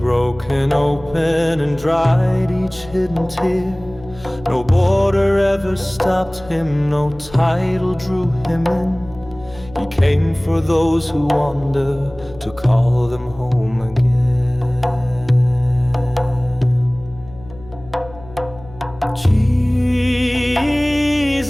open and dried each hidden tear. No border ever stopped him, no title drew him in. He came for those who wander, to call them home again.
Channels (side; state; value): left; noise; hum, 19 dB below the sound